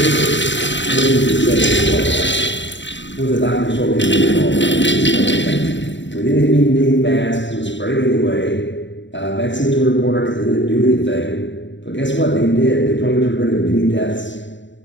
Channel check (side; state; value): right; late; 0.53 ms